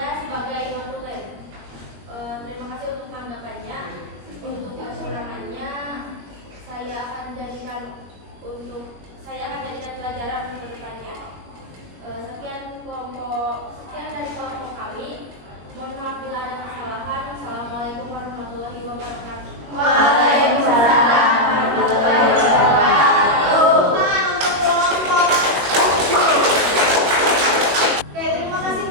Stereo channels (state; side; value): late; left; 21 ms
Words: sebagai non-tulen. Terima kasih untuk tanggapannya. Untuk kekurangannya saya akan jadikan pelajaran ke depannya. Sekian dari kelompok kami. Mohon maaf bila ada kesalahan. Assalamualaikum warahmatullahi wabarakatuh. Waalaikumsalam warahmatullahi wabarakatuh. Untuk kelompok. Oke, terima kasih